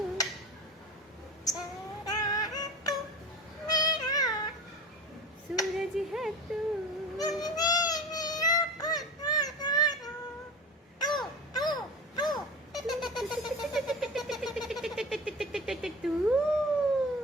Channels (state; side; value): normal; both; correlation 0.31